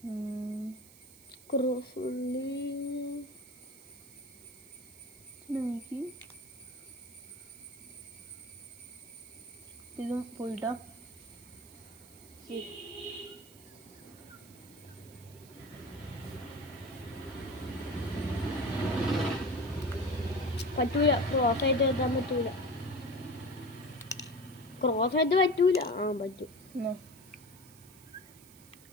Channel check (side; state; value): right; noise; hiss, 21 dB below the sound